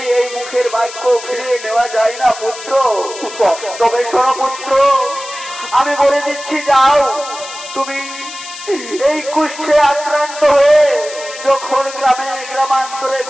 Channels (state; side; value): noise; left; hiss, 13 dB below the sound